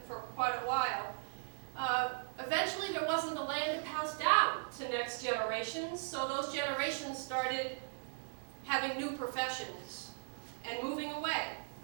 for quite a while. Eventually, there wasn't the land to pass down to next generations, so those generations started having new professions and moving away.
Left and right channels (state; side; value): silent; left; digital silence